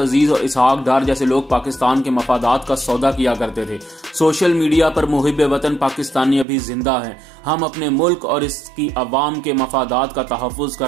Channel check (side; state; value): left; drops out; at 6.5 s